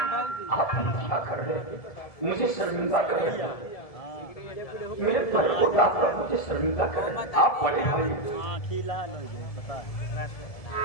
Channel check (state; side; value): late; right; 1.7 ms